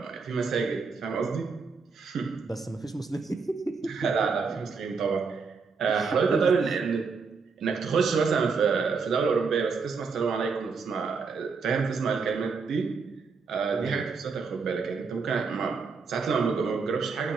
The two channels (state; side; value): quieter; left; 5.0 dB